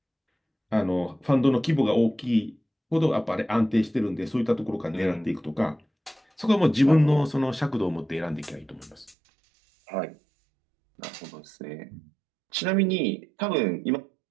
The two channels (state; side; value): drops out; left; at 9.2 s